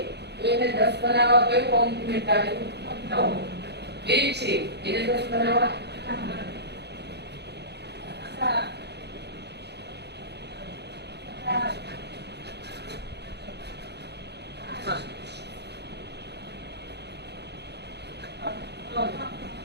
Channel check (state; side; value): late; left; 0.49 ms